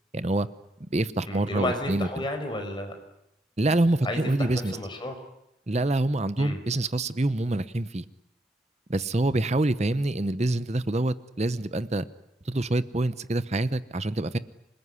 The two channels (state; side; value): normal; both; correlation 0.77